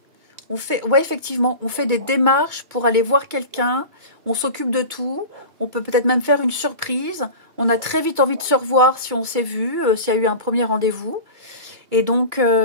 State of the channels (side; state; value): left; late; 2.3 ms